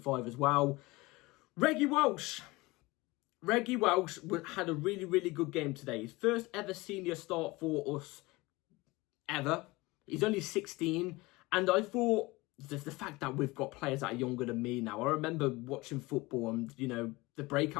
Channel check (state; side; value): quieter; right; 22.0 dB